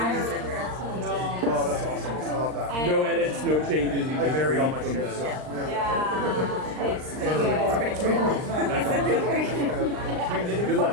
to the Oh, that's awesome. I love that. no edits, no changes. You I just buried all my read from shit. the- So. Yeah, it's pretty cool. That's awesome. Good luck.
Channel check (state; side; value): late; left; 39 ms